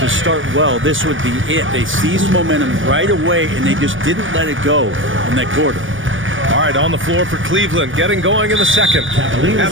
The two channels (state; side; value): late; left; 0.57 ms